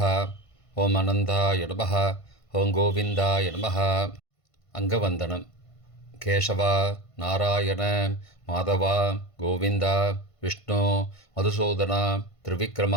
ஓம் அனந்தாய நமஹ, ஓம் கோவிந்தாய நமஹ. அங்கவந்தனம். கேசவா, நாராயண, மாதவா, கோவிந்தா, விஷ்ணு, மதுசூதனா,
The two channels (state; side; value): late; right; 1.5 ms